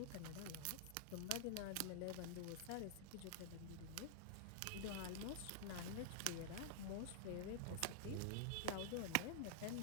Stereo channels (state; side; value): different; both; correlation -0.01